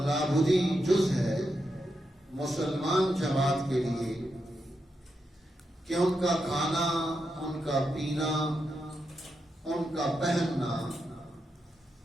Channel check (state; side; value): normal; both; correlation 0.85